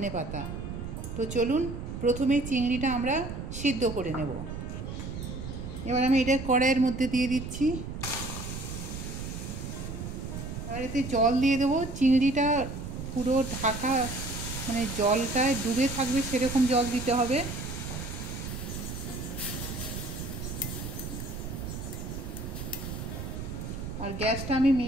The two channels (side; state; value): right; noise; rumble, 7 dB below the sound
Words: পাতা। তো চলুন প্রথমে চিংড়িটা আমরা সিদ্ধ করে নেব। এবার আমি এটা কড়াইয়ের মধ্যে দিয়ে দিচ্ছি। এবার এতে জল দিয়ে দেবো। চিংড়িটা পুরো ঢাকা, মানে জলটায় ডুবে থাকবে সেরকম জল দিতে হবে। আর গ্যাসটা আমি